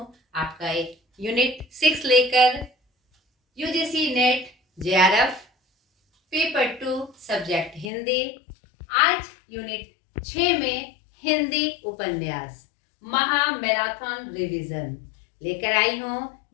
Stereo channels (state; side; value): drops out; right; at 7.9 s